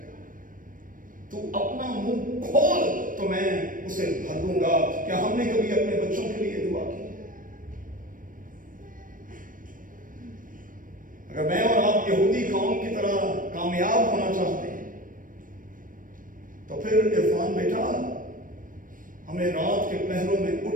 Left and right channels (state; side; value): late; left; 0.40 ms